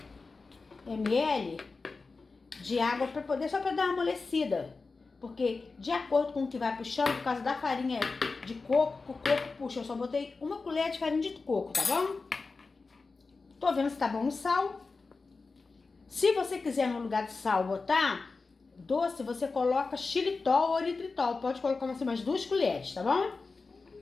ml de água para poder, só para dar uma amolecida. Porque de acordo com o que vai puxando, por causa da farinha de coco, o coco puxa. Eu só botei 1 colher de farinha de coco, tá bom? Tô vendo se tá bom o sal. Se você quiser no lugar de sal botar doce, você coloca xilitol ou eritritol. Pode colocar assim, umas 2 colheres, tá bom?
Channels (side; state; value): right; quieter; 4.1 dB